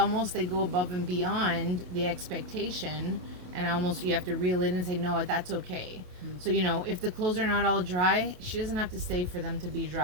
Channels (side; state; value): left; late; 28 ms